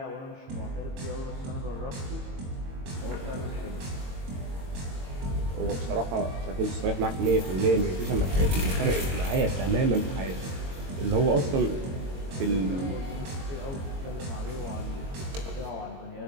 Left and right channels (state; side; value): late; left; 22 ms